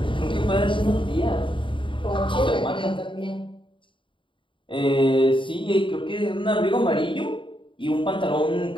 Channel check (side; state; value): right; late; 0.24 ms